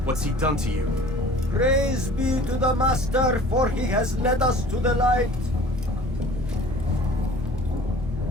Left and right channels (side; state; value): both; normal; correlation 0.47